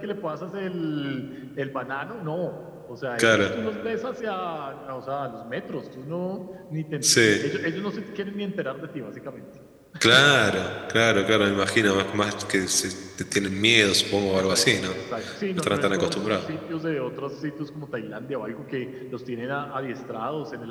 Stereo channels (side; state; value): both; identical; correlation 1.00